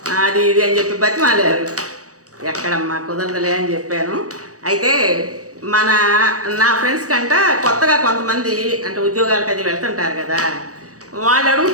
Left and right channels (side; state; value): left; late; 0.66 ms